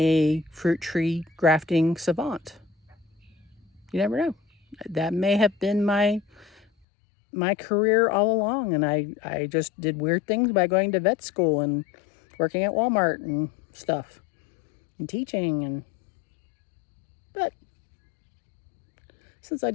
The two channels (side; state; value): right; drops out; at 6.7 s